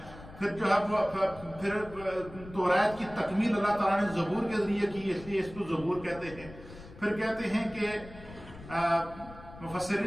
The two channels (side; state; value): left; noise; rumble, 17 dB below the sound